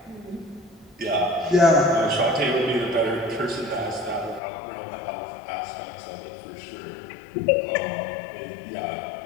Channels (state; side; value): drops out; right; at 4.4 s